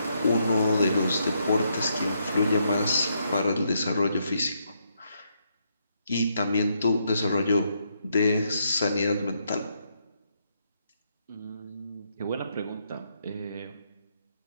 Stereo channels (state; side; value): inverted; both; correlation -0.77